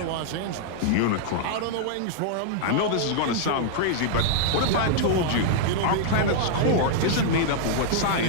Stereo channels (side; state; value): both; different; correlation -0.01